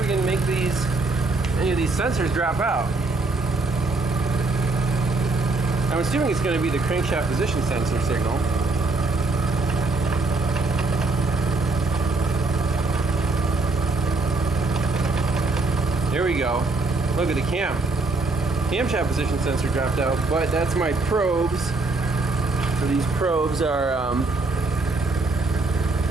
can make any of these sensors drop out. I'm assuming it's going to be the crankshaft position sensor signal. There we go. Look at the camshaft position sensor dropped out, but that's my probes. So these probes are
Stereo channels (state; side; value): quieter; left; 3.3 dB